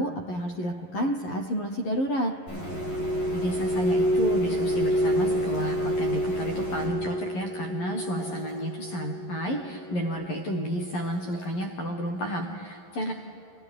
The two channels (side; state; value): right; late; 11 ms